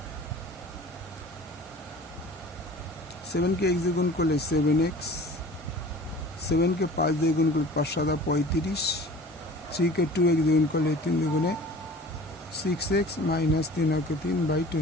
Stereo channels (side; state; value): both; normal; correlation 0.43